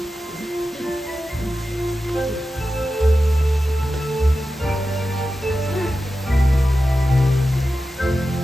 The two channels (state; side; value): normal; both; correlation 0.92